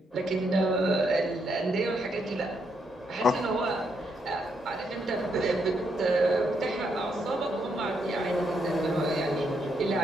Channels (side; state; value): both; normal; correlation 0.77